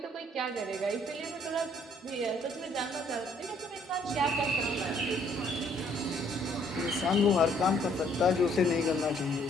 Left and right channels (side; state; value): both; normal; correlation 0.64